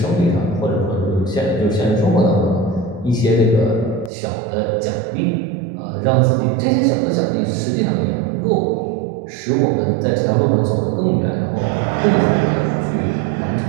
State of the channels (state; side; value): drops out; left; at 4.1 s